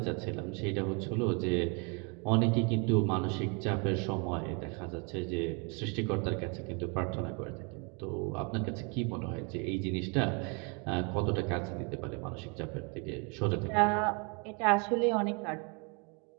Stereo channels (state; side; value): quieter; left; 33.6 dB